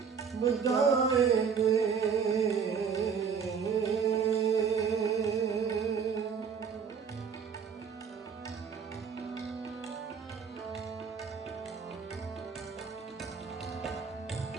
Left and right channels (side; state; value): left; quieter; 6.4 dB